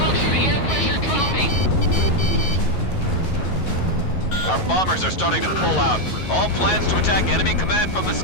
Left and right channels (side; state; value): right; late; 11 ms